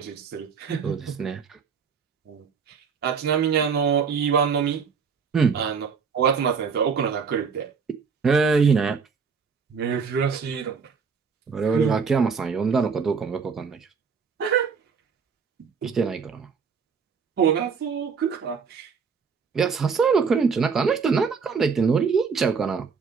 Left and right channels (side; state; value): left; quieter; 5.8 dB